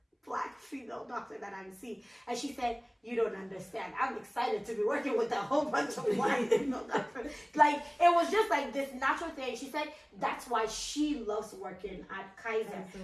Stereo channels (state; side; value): identical; both; correlation 1.00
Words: black female doctor that I'm seeing. And she said, you don't understand. I'm excited to be working with a whole bunch of black female doctors. Like, it was just like this natural thing. She said that's why she loves working at Kaiser.